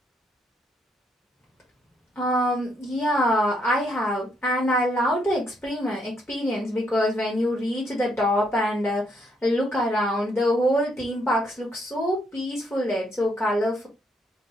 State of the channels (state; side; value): normal; both; correlation 0.73